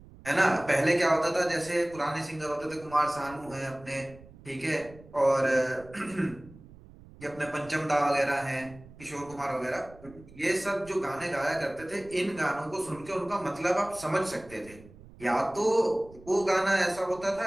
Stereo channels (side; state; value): right; noise; rumble, 21 dB below the sound